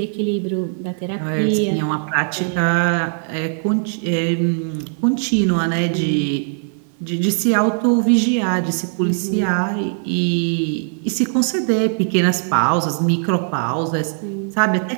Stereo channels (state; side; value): silent; left; 59 dB below the other